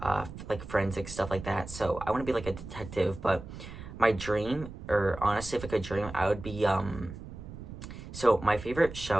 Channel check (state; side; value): noise; right; rumble, 12 dB below the sound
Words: like forensic stuff like that. So I want to be like a detective, but my dream, or honestly if I could dream, I would be so my favorite